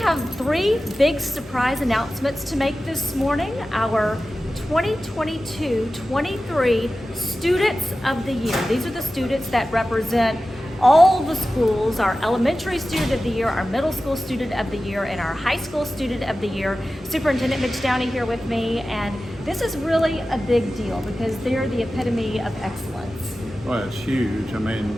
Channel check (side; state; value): both; normal; correlation 0.94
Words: 3 big surprise announcements to make this morning. Our 2022-23 Students of the Year. These are the students that represent all the schools, our elementary student of the year, our middle school student of the year, and our high school student of the year. Superintendent Mitch Downey here with me, and this is really a big deal because they're the epitome of excellence. Well, it's huge. I mean,